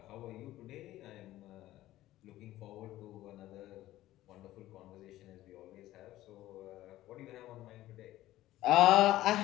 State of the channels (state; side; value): quieter; right; 15.2 dB